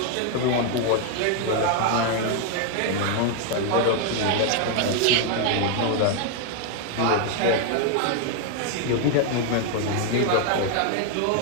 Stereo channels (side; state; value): both; different; correlation 0.01